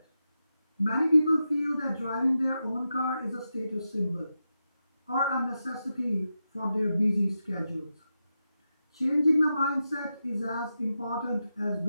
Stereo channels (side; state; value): both; inverted; correlation -0.89